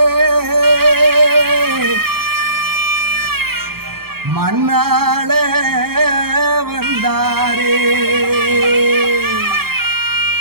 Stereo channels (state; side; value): late; left; 0.94 ms